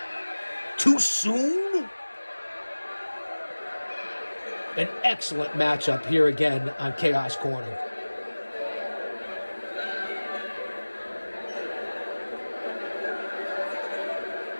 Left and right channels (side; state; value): both; inverted; correlation -1.00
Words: Too soon? An excellent matchup here again on Chaos Corner.